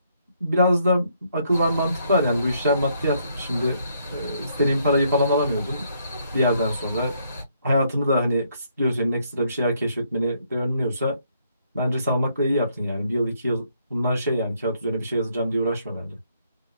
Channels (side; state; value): both; inverted; correlation -0.71